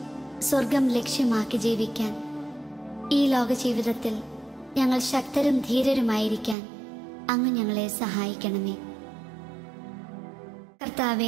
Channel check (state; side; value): drops out; left; at 6.6 s